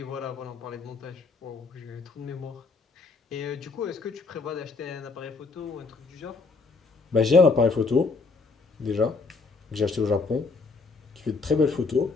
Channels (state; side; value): quieter; right; 4.2 dB